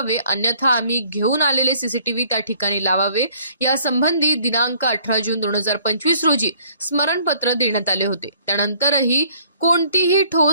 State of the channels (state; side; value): inverted; both; correlation -0.59